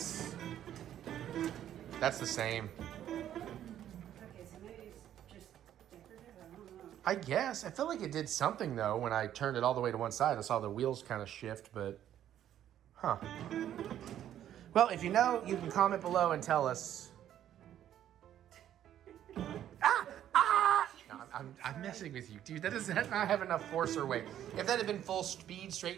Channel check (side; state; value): left; quieter; 11.1 dB